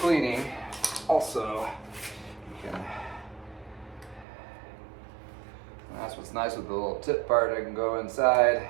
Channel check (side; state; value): left; drops out; at 4.2 s